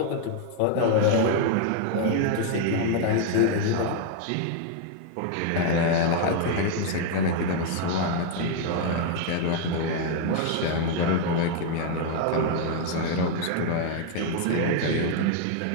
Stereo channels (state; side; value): different; both; correlation 0.00